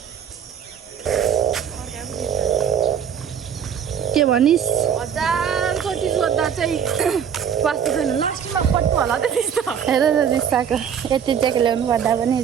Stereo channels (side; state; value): left; quieter; 8.2 dB